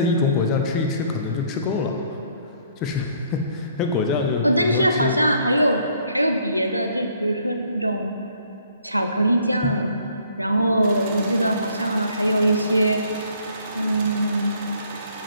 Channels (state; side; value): inverted; both; correlation -0.62